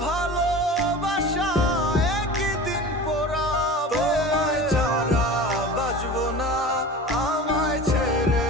ভালোবাসা একই দিন পোড়াবে। তোমায় ছাড়া বাঁচবো না, আমায় ছেড়ে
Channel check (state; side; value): normal; both; correlation 0.36